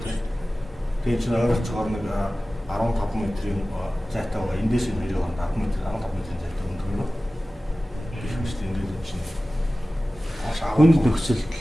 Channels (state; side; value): normal; both; correlation 0.96